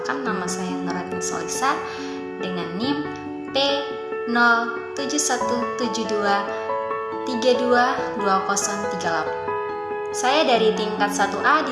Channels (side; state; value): both; identical; correlation 1.00